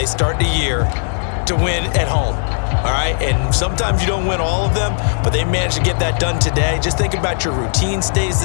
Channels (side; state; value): right; silent; 68 dB below the other